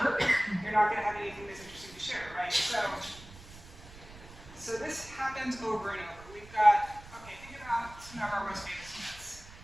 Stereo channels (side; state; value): right; noise; rumble, 18 dB below the sound